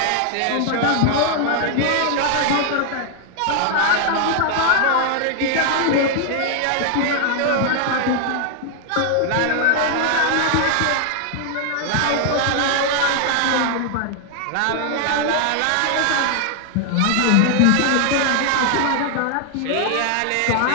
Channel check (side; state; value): both; different; correlation 0.00